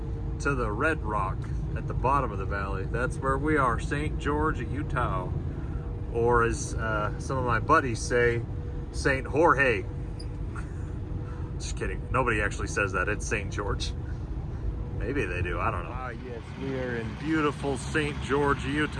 to the red rock at the bottom of the valley. That's where we are, St. George, Utah. Or as some of my buddies say, St. Jorge. Just kidding. Nobody actually says that. It's St. George. Maybe they do. I don't know. Ah, yes. We are in beautiful St. George,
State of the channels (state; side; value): identical; both; correlation 1.00